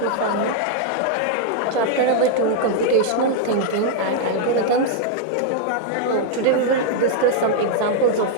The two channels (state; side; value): different; both; correlation 0.00